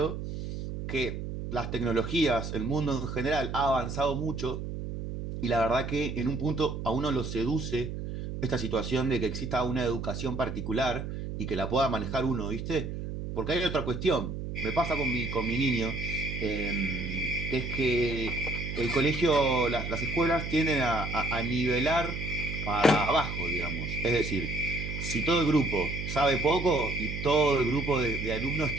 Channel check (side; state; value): right; noise; hum, 6 dB below the sound